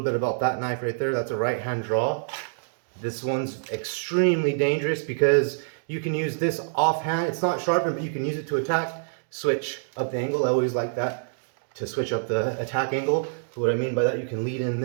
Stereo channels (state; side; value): silent; left; digital silence